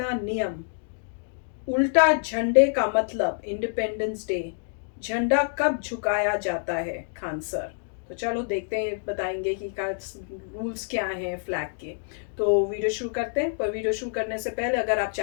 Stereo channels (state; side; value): silent; right; digital silence